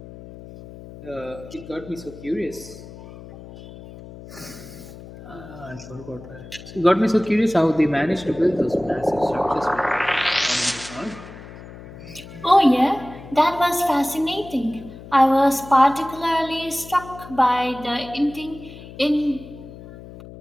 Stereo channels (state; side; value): noise; left; hum, 16 dB below the sound